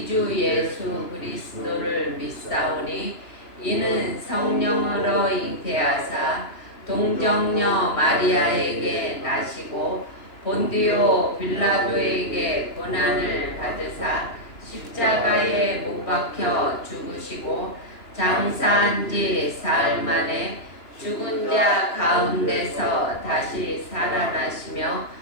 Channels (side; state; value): right; late; 2.9 ms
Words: 주 예수 그리스도를 믿사오니 이는 성령으로 잉태하사 동정녀 마리아에게 나시고 본디오 빌라도에게 고난을 받으사 십자가에 못 박혀 죽으시고 장사한 지 사흘 만에 죽은 자 가운데서 다시 살아나시며